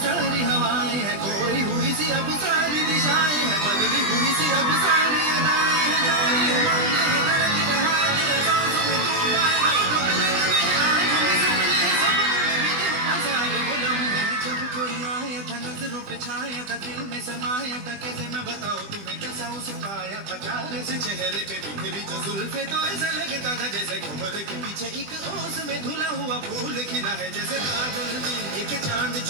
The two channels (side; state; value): left; late; 20 ms